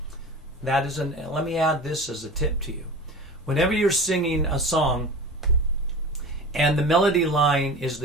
That is let me add this as a tip to you. Whenever you're singing a song and the melody line is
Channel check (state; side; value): normal; both; correlation 0.35